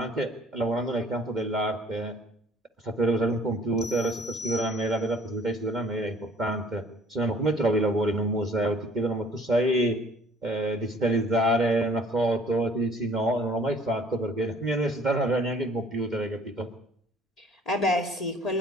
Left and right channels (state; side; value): normal; both; correlation 0.55